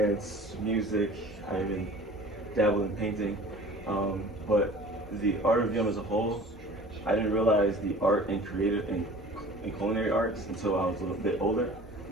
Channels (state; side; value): normal; both; correlation 0.44